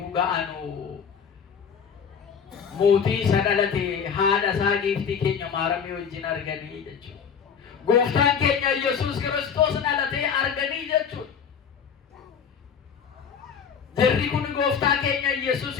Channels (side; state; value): right; quieter; 7.0 dB